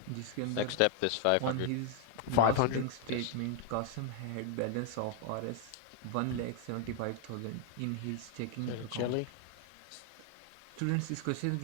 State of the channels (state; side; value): different; both; correlation 0.00